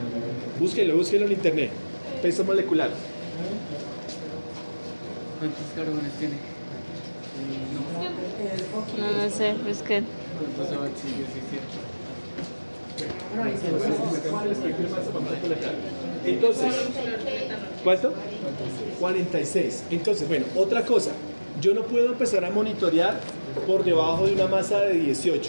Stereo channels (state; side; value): inverted; both; correlation -1.00